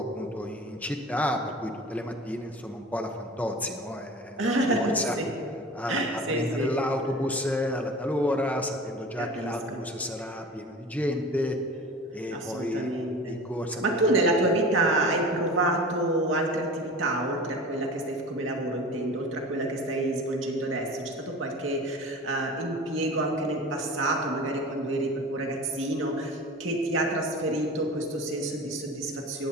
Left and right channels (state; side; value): normal; both; correlation 0.37